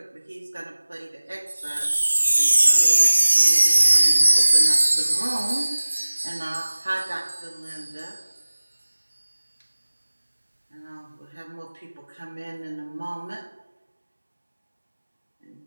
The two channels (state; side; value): inverted; both; correlation -1.00